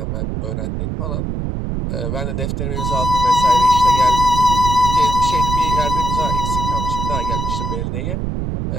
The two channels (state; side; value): noise; right; rumble, 2 dB below the sound